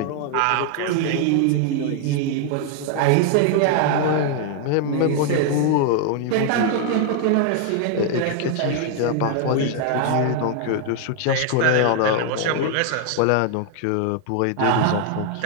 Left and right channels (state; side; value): different; both; correlation 0.00